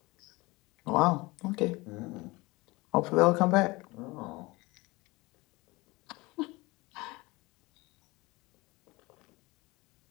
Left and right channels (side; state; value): right; quieter; 23.0 dB